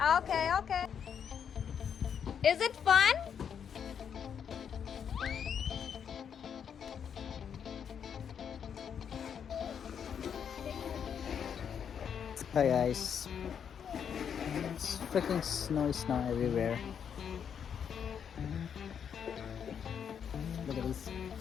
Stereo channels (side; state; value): right; quieter; 7.8 dB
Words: Okay, okay. Is it fun? Hi guys, it's freaking snow everywhere. Look at these